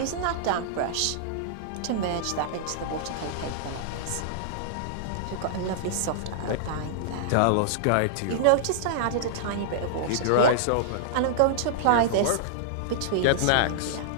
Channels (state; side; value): different; both; correlation -0.01